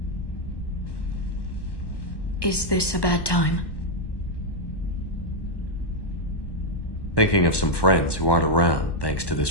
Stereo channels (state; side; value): late; right; 1.1 ms